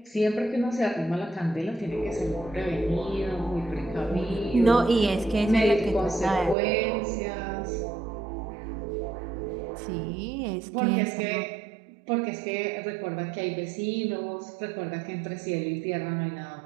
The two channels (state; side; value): drops out; left; at 6.6 s